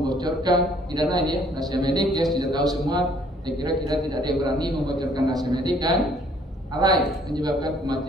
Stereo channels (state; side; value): normal; both; correlation 0.61